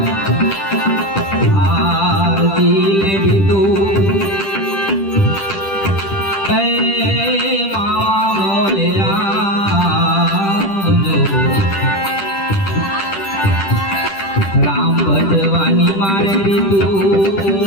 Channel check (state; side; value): late; right; 10 ms